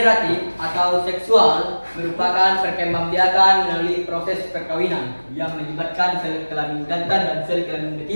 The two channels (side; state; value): both; inverted; correlation -1.00